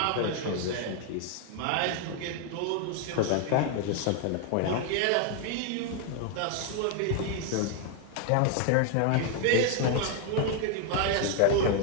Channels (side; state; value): both; different; correlation 0.00